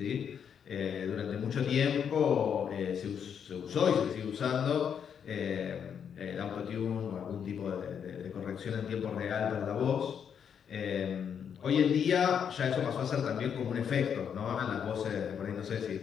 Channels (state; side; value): quieter; right; 7.7 dB